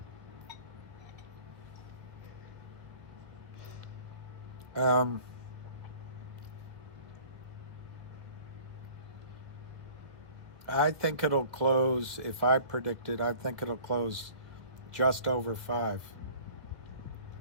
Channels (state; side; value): late; left; 1.5 ms